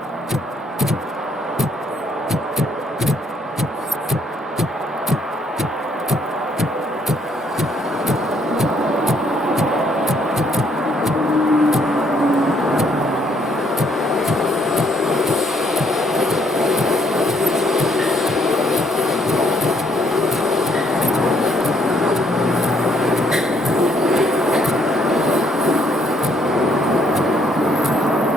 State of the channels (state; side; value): normal; both; correlation 0.68